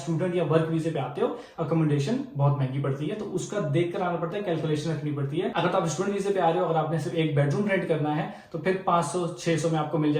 या वर्क वीजे पे आते हो, अकोमोडेशन बहुत महंगी पड़ती है, तो उसका देख कर आना पड़ता है, कैलकुलेशन रखनी पड़ती है। अगर तो आप स्टूडेंट वीजे पे आ रहे हो, अगर आपने सिर्फ 1 बेडरूम रेंट करना है तो फिर 500-600 में आपको मिल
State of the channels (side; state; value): both; identical; correlation 1.00